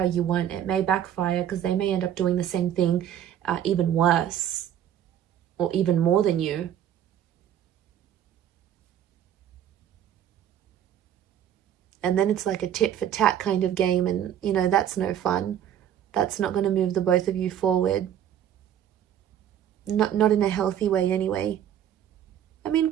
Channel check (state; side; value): quieter; left; 10.2 dB